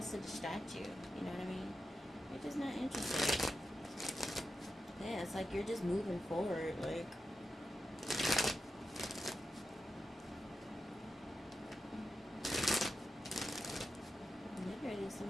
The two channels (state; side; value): normal; both; correlation 0.89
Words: to distract you. You know what I mean? You're just not interested. Yeah, it's like you're just moving forward, like...